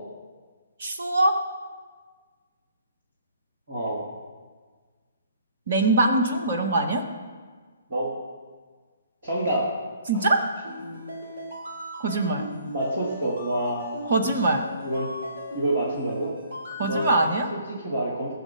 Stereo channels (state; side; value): inverted; both; correlation -0.59